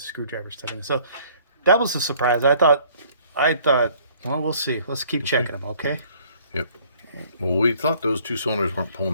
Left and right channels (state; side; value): inverted; both; correlation -0.58